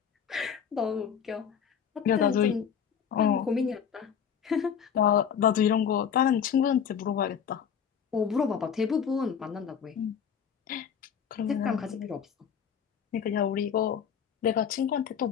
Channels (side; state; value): right; quieter; 7.7 dB